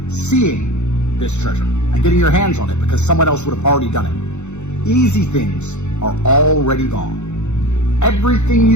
seeing this treasure and getting your hands on it because someone else would have already done it. Easy things are already gone. Everything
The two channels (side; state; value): right; late; 0.83 ms